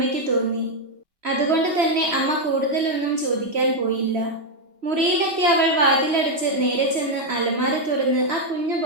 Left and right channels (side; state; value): left; late; 2.9 ms